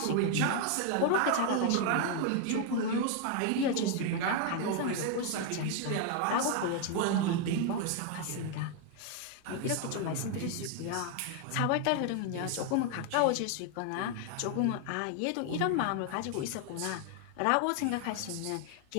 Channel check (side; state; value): both; different; correlation 0.00